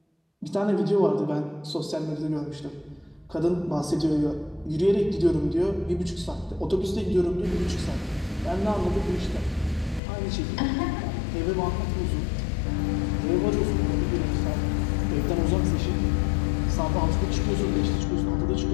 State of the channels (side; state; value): right; drops out; at 10.0 s